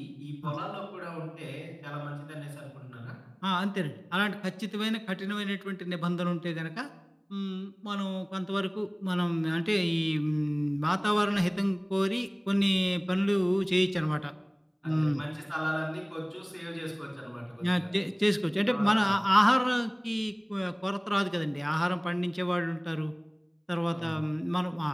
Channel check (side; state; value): both; identical; correlation 1.00